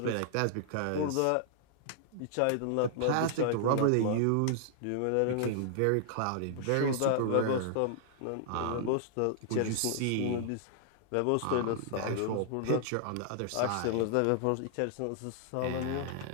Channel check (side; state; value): both; different; correlation -0.01